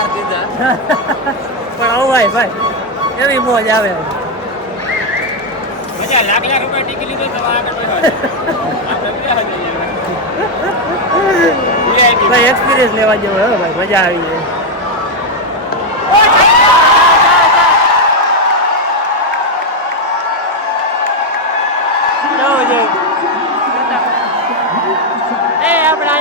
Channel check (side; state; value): both; normal; correlation 0.03